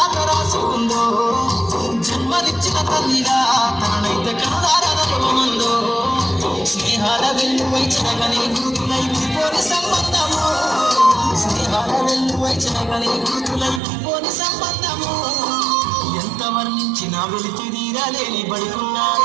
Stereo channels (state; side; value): drops out; left; at 13.8 s